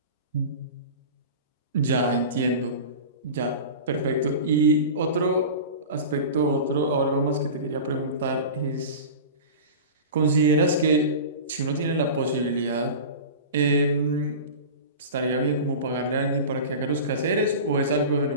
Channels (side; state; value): both; inverted; correlation -0.32